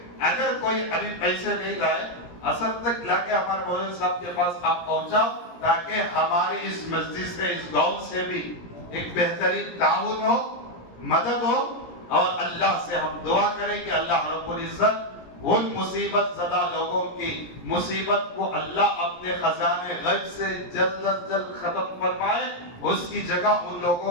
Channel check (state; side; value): late; right; 17 ms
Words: اگر کوئی ابھی پیسے نہیں لائے، اثر تک لا کے ہمارے مولانا صاحب کے پاس آپ پہنچاؤ، تاکہ ہماری اس مسجد سے، اس گاؤں سے بھی ایک بہترین تعاون ہو، مدد ہو، اور اللہ سے ہم دعا کریں کہ اللہ رب العزت ان مصیبت زدہ لوگوں کی مصیبت کو اللہ اپنے خزانے غیب سے جلد از جلد ختم فرمائے، اس کی جگہ ان لوگوں